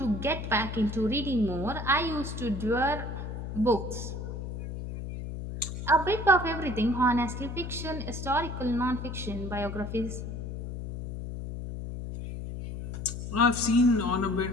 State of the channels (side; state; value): left; noise; hum, 7 dB below the sound